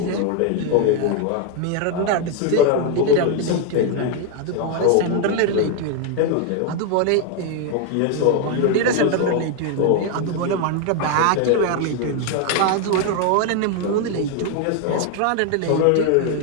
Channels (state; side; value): different; both; correlation 0.01